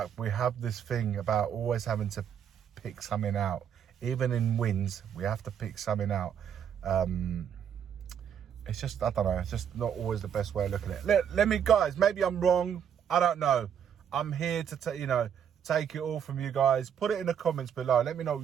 we have this thing about always having to pick something out. Even in wins, we have to pick something out. It's just, I don't know, it's just not always the best way of looking at it. Let me, guys, maybe I'm wrong. I don't know. I'm here to, take it all from you guys. Put it in the comments below. Let me know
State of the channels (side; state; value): left; quieter; 8.5 dB